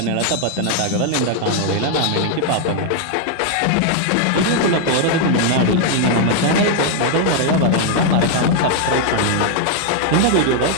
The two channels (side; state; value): both; different; correlation 0.00